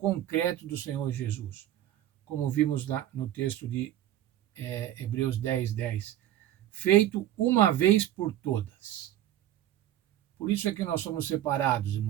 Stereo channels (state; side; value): quieter; left; 12.7 dB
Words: do Senhor Jesus. Como vimos no texto de Hebreus 10, 10. Feito uma vez por todas. Por isso é que nós somos separados,